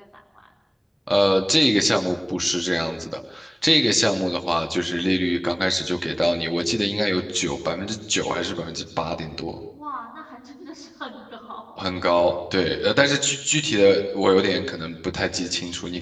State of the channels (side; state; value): both; identical; correlation 1.00